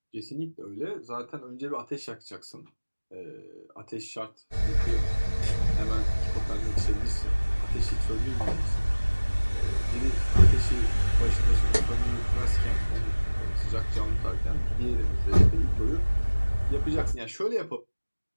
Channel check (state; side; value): inverted; both; correlation -1.00